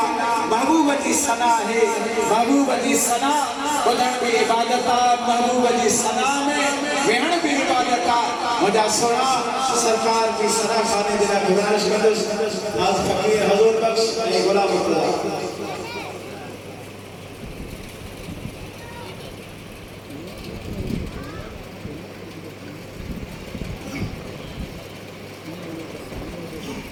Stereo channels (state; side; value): identical; both; correlation 1.00